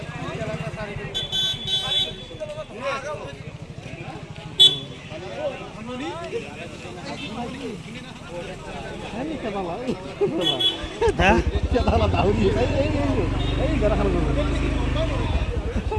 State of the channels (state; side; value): identical; both; correlation 1.00